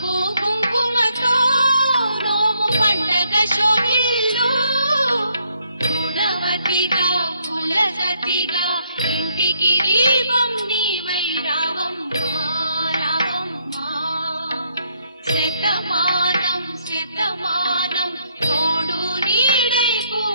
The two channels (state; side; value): inverted; both; correlation -0.71